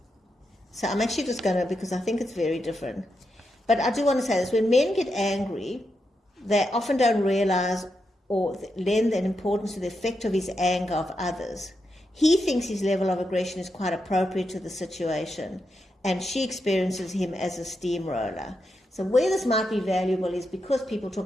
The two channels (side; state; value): both; normal; correlation 0.85